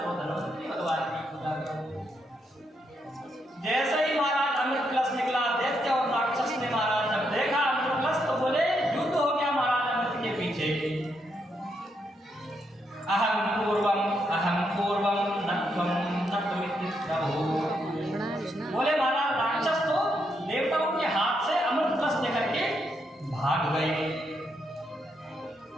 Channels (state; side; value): normal; both; correlation 0.79